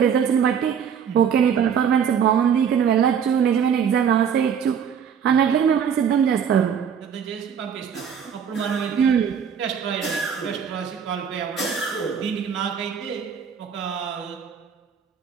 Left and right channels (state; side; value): quieter; left; 7.6 dB